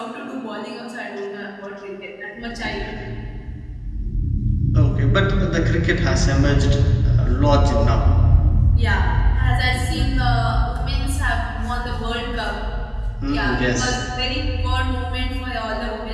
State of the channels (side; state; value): both; identical; correlation 1.00